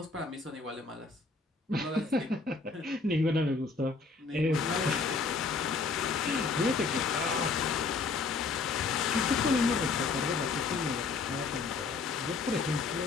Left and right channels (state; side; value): quieter; right; 4.3 dB